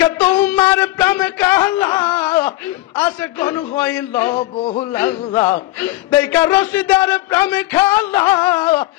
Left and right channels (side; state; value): right; quieter; 17.6 dB